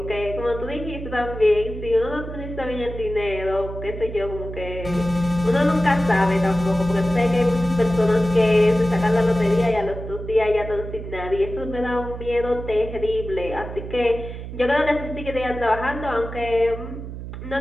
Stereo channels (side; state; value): right; noise; hum, 9 dB below the sound